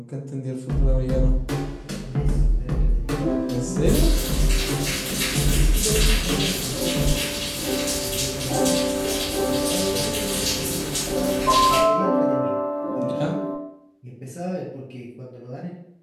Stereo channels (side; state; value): both; identical; correlation 1.00